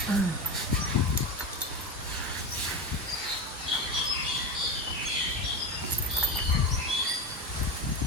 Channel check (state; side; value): normal; both; correlation 0.21